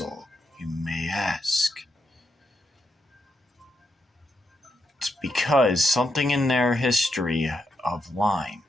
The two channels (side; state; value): both; normal; correlation 0.82